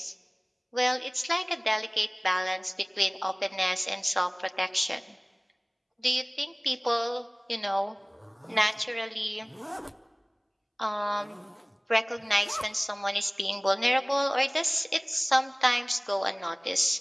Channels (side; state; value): both; identical; correlation 1.00